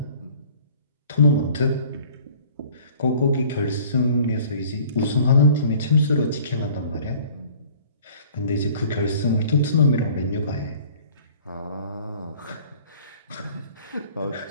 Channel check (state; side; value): inverted; both; correlation -0.50